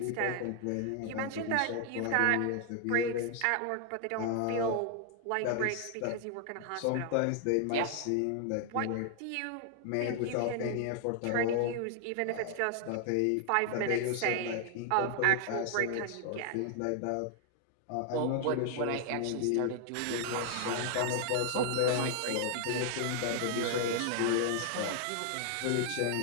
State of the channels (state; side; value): different; both; correlation 0.00